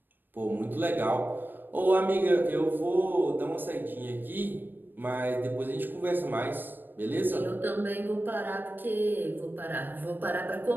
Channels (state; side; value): late; left; 0.093 ms